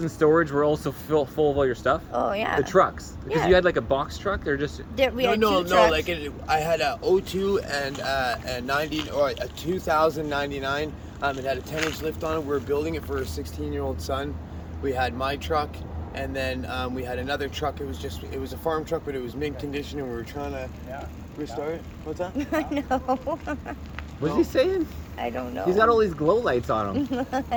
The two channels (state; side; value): identical; both; correlation 1.00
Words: in storage were also full of all your stuff? Oh yeah. The trucks. Because Yeah. you had like a box truck. They're just. We No, had no, 2 no. trucks. Like I had a 02 and a 90 or a 2099. It had a 10-inch lift on it. We were building it for a 16-year-old son. We had my truck, and then we had another truck. It was a farm truck, but it was mint condition, and we were trying to restart it. What's that? No, What's he saying? I don't know. He's got all these glow lights on him.